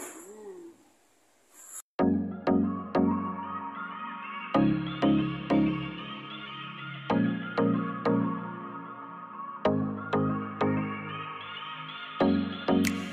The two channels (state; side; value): identical; both; correlation 1.00